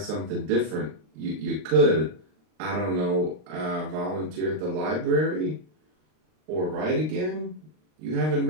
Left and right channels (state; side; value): late; left; 39 ms